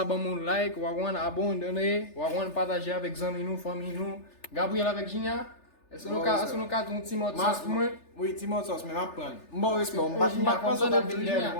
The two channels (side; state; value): right; late; 3.4 ms